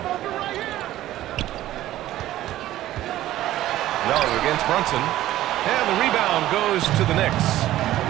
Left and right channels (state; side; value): quieter; left; 14.4 dB